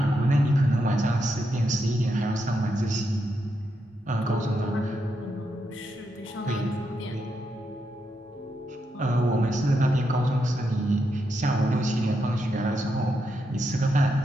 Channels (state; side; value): normal; both; correlation 0.82